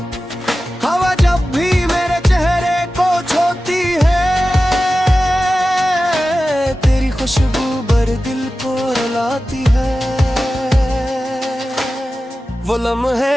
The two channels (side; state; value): both; normal; correlation 0.94